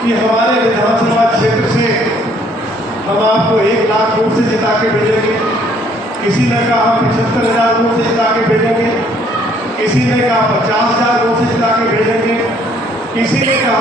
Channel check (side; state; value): both; normal; correlation 0.63